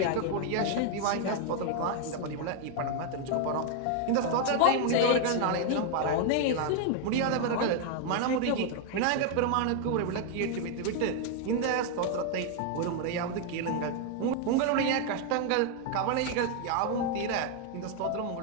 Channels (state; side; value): different; both; correlation 0.00